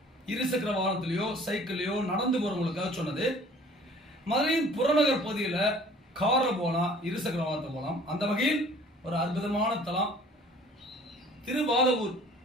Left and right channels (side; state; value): both; normal; correlation 0.51